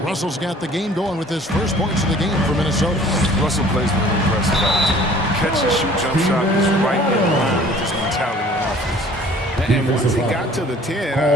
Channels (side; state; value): both; normal; correlation 0.51